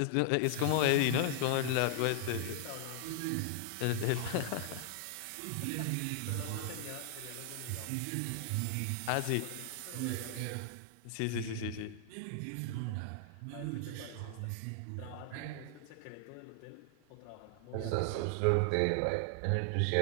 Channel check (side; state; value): both; different; correlation 0.00